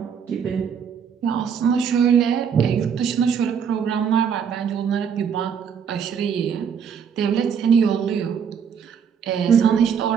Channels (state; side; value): quieter; left; 7.3 dB